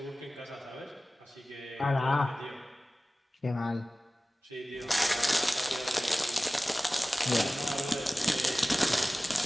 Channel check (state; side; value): normal; both; correlation 0.97